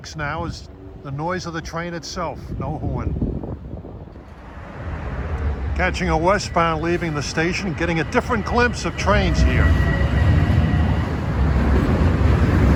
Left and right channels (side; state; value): both; identical; correlation 1.00